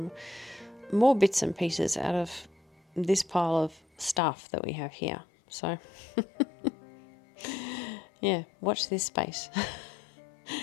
more bits and pieces out of this pile of stuff that we have here. So, yeah, watch this space.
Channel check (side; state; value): right; drops out; at 4.2 s